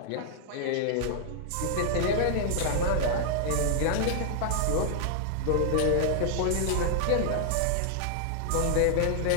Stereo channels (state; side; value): different; both; correlation -0.01